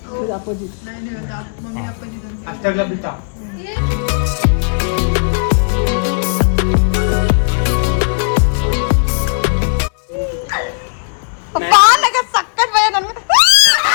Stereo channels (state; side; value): silent; right; digital silence